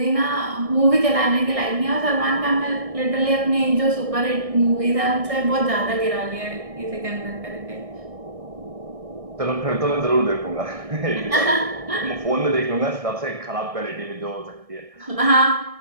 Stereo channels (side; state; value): left; late; 1.6 ms